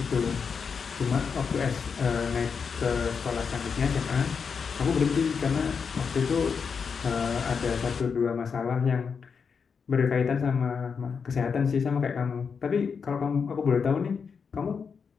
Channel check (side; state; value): right; quieter; 5.9 dB